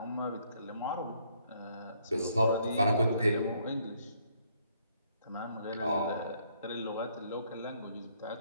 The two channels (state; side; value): inverted; both; correlation -0.68